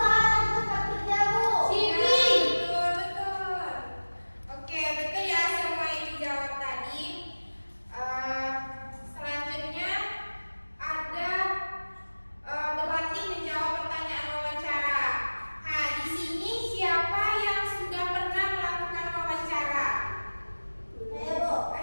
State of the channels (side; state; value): both; inverted; correlation -1.00